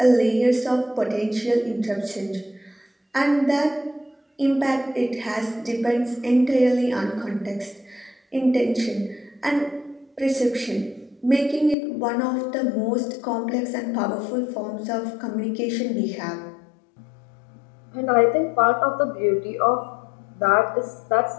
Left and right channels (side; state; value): right; drops out; at 11.8 s